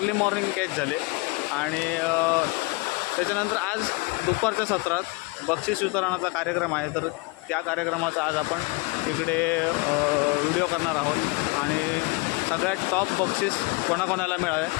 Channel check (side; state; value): right; quieter; 26.2 dB